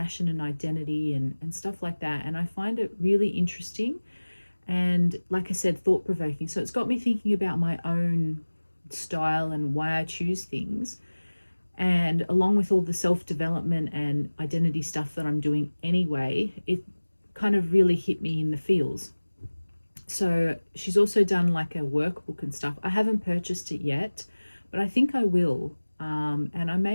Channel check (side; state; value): both; inverted; correlation -1.00